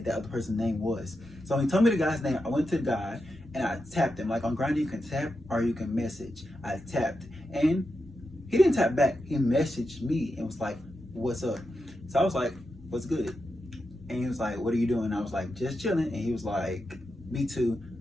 that other person's name was. So when he told me the guy's name, I went to the guy and I tapped him. Like on Grindr, you can tap or you can message. I tapped, and he didn't tap back. He messaged me and was like, what's up? So I was like, what's good? And he was like, what are you doing? I was like, just chilling. And he was like, me too,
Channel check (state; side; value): normal; both; correlation 0.87